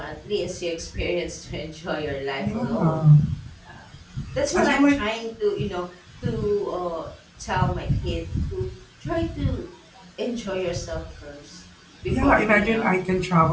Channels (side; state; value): both; identical; correlation 1.00